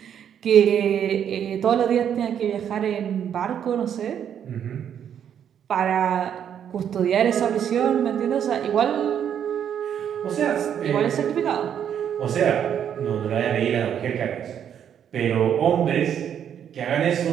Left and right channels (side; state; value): left; quieter; 8.9 dB